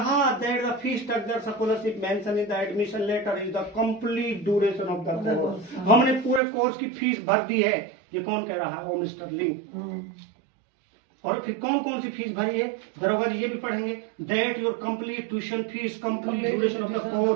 that the fee structure scholarship mention in the admission letter is the complete duration of the course. हमने पूरे कोर्स की फीस भर दी है। ये कौन कह रहा है, ओ मिस्टर लिंग। और फिर कौन कौन सी फीस भरी है, दरोगा जी ये भी पढ़ेंगे, that your complete tuition fees complete duration of the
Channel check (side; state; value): left; drops out; at 6.4 s